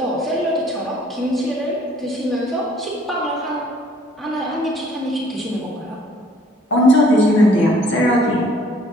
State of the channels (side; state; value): both; normal; correlation 0.59